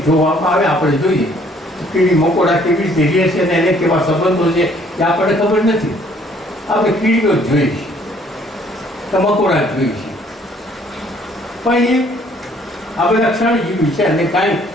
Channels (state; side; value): normal; both; correlation 0.61